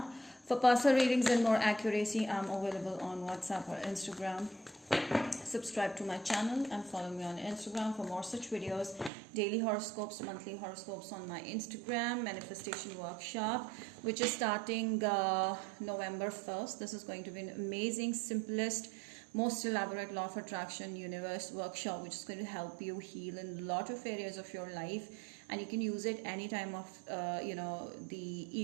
For personal readings and more accuracy, I'm available on WhatsApp or Instagram. Subscribe to my channel and follow me on Instagram for more such videos. Daily horoscopes, monthly horoscopes on my Instagram. Manifestation workshop, which is starting November 1st. This is going to be an amazing, simplest, most elaborate law of attraction universe workshop, which is going to help you heal in a lot of areas of your life, and you can use it any time of the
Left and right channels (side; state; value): left; drops out; at 9.1 s